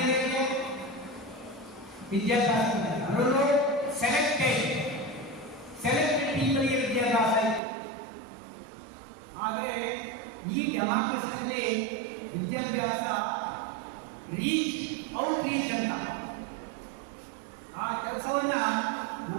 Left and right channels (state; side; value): drops out; left; at 7.6 s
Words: ವಿದ್ಯಾಭ್ಯಾಸ, ಅದರಲ್ಲೂ ಸೆಲೆಕ್ಟೆಡ್ ಪೀಪಲ್ಗೆ ವಿದ್ಯಾಭ್ಯಾಸ ಇತ್ತು. ಆದರೆ ಈ ಡೆಮಾಕ್ರಸಿಯಲ್ಲಿ ವಿದ್ಯಾಭ್ಯಾಸ ಔಟ್ರೀಚ್ ಅಂತ ಆ ಕೆಲಸವನ್ನ